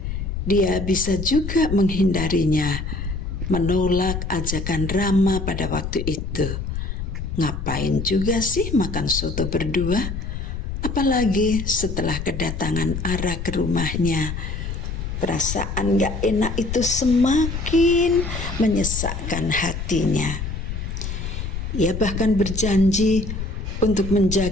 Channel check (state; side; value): noise; left; rumble, 5 dB below the sound